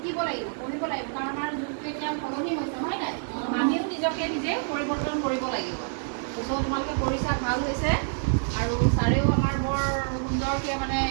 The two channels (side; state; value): left; silent; digital silence